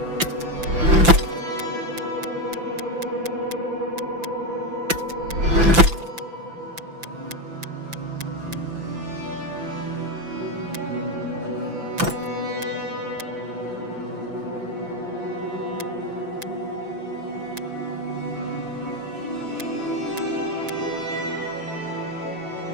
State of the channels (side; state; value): left; late; 5.9 ms